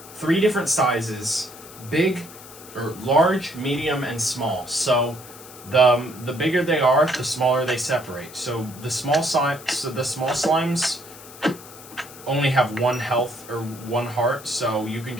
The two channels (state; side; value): noise; left; hiss, 18 dB below the sound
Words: 3 different sizes: big, or large, medium, and small. So the bigger they are, the smaller they separate. So the small slimes only have 1 health or 1 heart, so you can